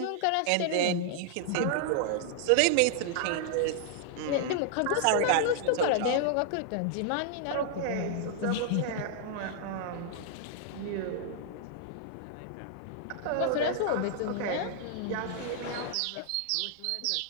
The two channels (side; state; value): both; different; correlation -0.01